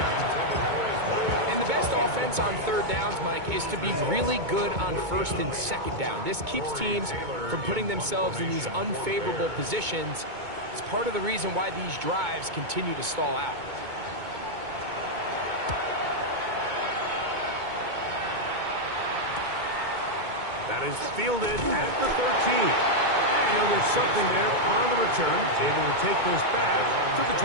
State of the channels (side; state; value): left; late; 2.2 ms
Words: And the best offense on 3rd downs, Mike, is to be really good on 1st and 2nd down. This keeps teams from putting themselves in these unfavorable positions. It's part of the reason why these drives continue to stall out. That is fielded at the 13. And there's something there on the return. Able to take this back to the